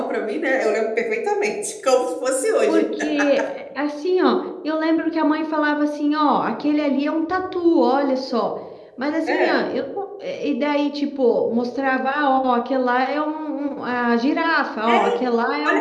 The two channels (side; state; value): both; identical; correlation 1.00